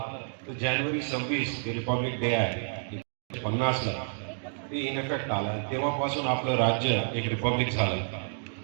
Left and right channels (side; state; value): left; silent; digital silence